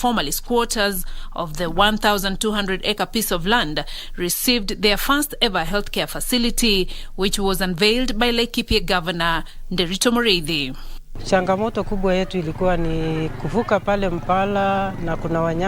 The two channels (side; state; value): both; identical; correlation 1.00